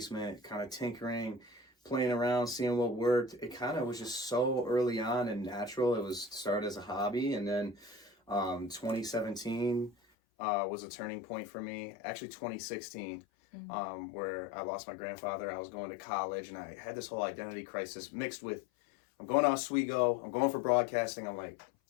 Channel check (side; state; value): right; drops out; at 10.0 s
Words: kind of tinkering, playing around, seeing what worked. It kind of was just so early on and natural. It was started as a hobby, and then 2017 was a turning point for me. Actually, 2016. Where I lost my grandfather. I was going to college and I had this whole identity crisis mixed with, I'm going to Oswego, I'm going for broadcasting. I'm like,